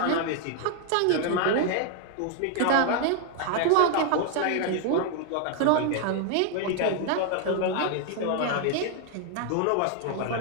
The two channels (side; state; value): both; different; correlation 0.00